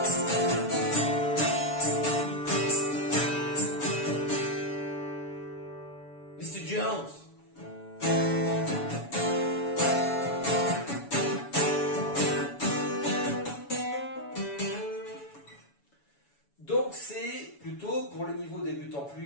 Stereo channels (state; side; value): late; right; 7.1 ms